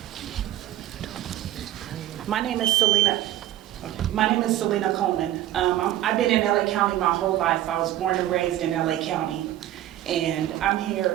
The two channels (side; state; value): left; quieter; 13.6 dB